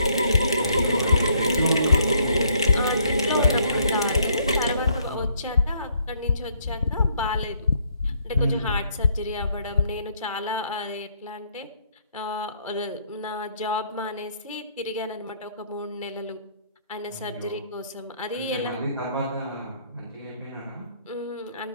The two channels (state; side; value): inverted; both; correlation -0.67